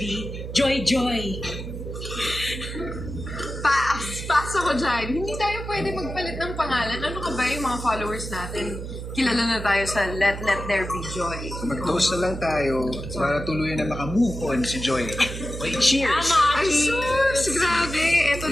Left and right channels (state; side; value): noise; right; hum, 8 dB below the sound